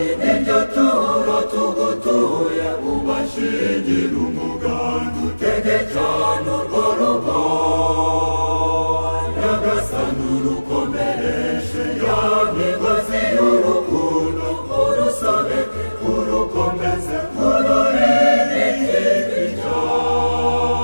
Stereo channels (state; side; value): inverted; both; correlation -1.00